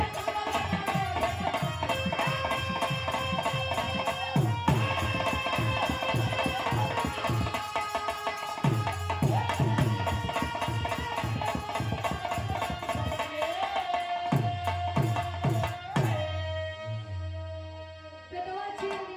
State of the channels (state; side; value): identical; both; correlation 1.00